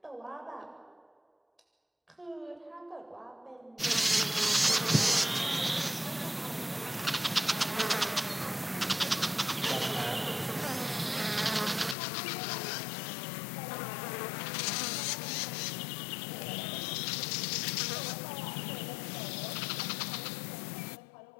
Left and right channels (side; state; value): right; drops out; at 12.0 s